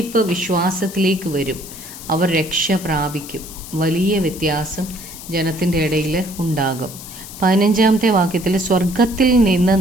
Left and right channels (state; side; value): noise; left; hiss, 14 dB below the sound